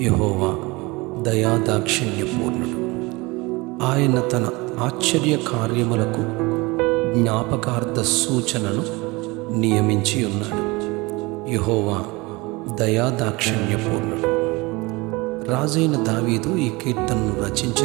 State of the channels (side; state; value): left; quieter; 24.1 dB